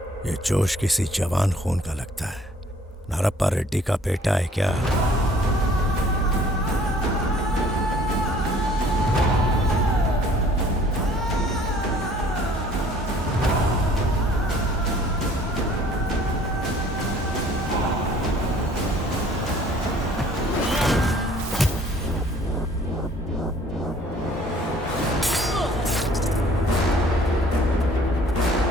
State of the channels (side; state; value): both; normal; correlation 0.55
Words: ये जोश किसी जवान खून का लगता है। नारप्पा रेड्डी का बेटा है क्या?